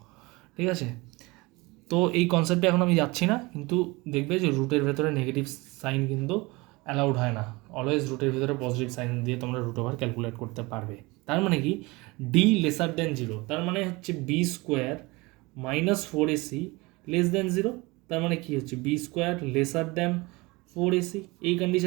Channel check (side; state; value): left; quieter; 23.8 dB